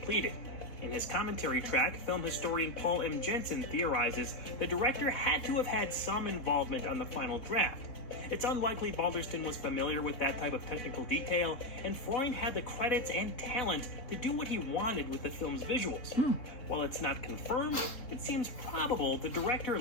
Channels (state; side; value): late; right; 3.7 ms